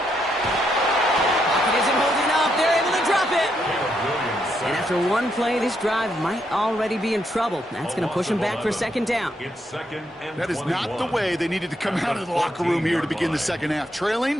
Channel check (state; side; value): normal; both; correlation 0.78